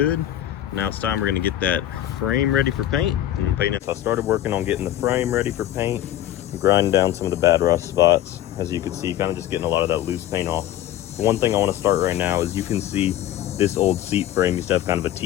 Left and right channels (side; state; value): right; quieter; 12.7 dB